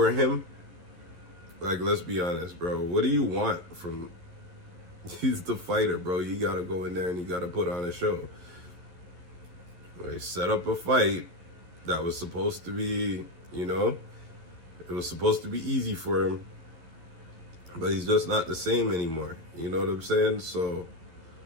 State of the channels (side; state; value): left; late; 11 ms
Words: him? Like, let's be honest, bro. What do you want from... He's the fighter, bro. You gotta go in there and you gotta put on a show. They set up a fight that was supposed to be, it was supposed to be easy for him. But he's just not the same anymore. You know what I'm saying? So,